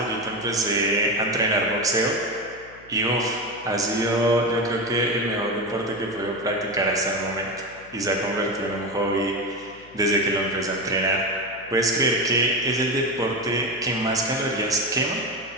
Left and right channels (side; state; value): left; noise; hum, 24 dB below the sound